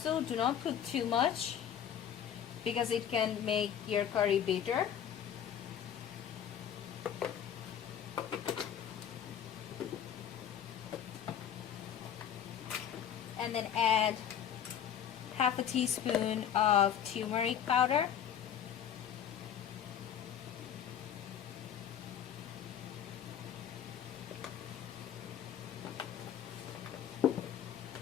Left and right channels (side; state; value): right; quieter; 9.2 dB